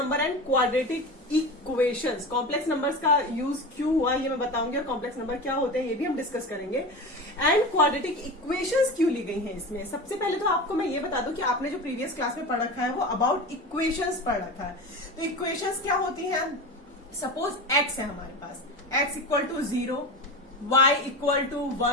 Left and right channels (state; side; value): normal; both; correlation 0.27